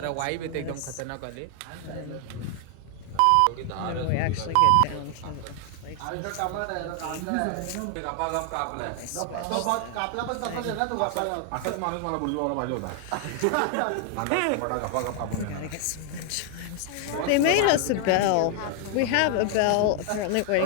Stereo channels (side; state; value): both; different; correlation 0.00